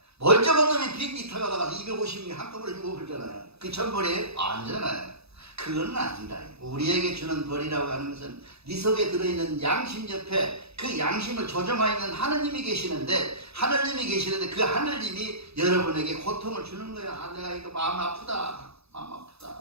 멀쩡한 놈이 비행기 타고 나가서 250명 한꺼번에 죽어버리잖아요. 그 천벌이에요? 아니잖아요. 그건 아니다. 우리에게 주는 벌이라고 하는 것은 네 속에 들어있는 양심 옆에 그 양심을 조정하고 있는 하느님이 계시는데 그 하느님이 여러분에게 고통을 주는 거야. 아, 내가 이거 마음 아프다.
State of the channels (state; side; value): late; left; 0.79 ms